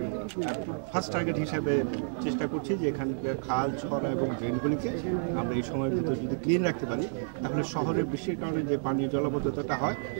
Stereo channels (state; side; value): silent; left; digital silence